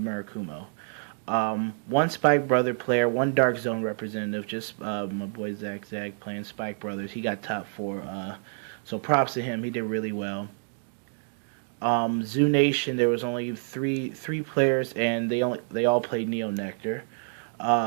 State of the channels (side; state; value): left; silent; 60 dB below the other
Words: Murakumo. One Spike Brother player, one Dark Zone representative, just my boy Zach playing Spike Brothers. He got top four, so props to him. He did really well. Zoo Nation, there was only three players, and they all played Neo Nectar.